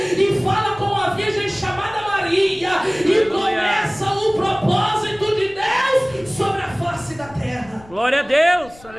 e fala com a virgem chamada Maria, e começa o propósito de Deus sobre a face da terra. Glória a Deus.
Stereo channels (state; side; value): noise; left; rumble, 23 dB below the sound